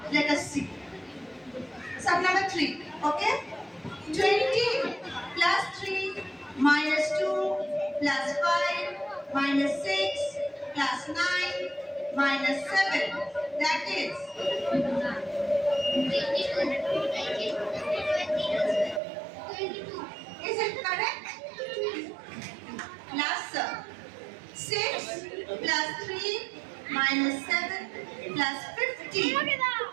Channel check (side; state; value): left; drops out; at 19.0 s